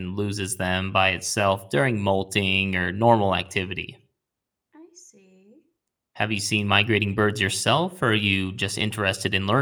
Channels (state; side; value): identical; both; correlation 1.00